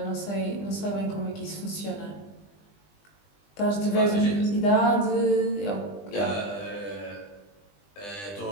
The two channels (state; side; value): late; right; 20 ms